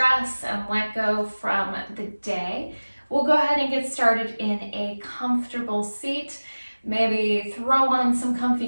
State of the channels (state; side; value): inverted; both; correlation -1.00